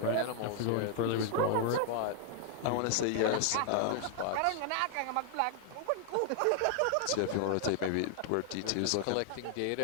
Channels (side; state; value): both; different; correlation 0.00